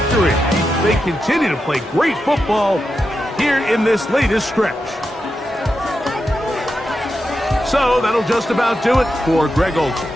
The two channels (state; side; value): normal; both; correlation 0.88